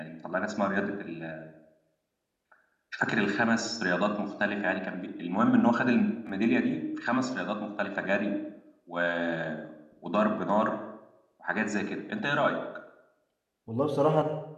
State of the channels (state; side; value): identical; both; correlation 1.00